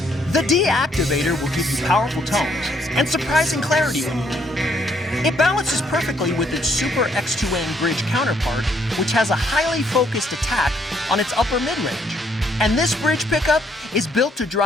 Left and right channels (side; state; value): both; normal; correlation 0.69